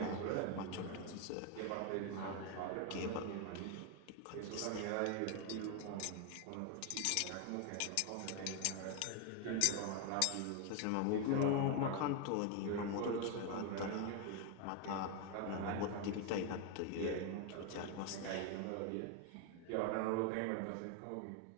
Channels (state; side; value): different; both; correlation 0.01